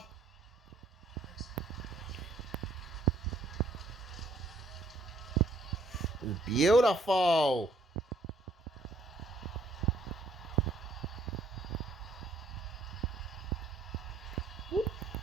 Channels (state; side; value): quieter; left; 3.1 dB